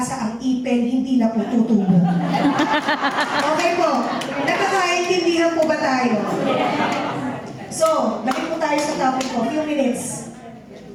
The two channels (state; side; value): identical; both; correlation 1.00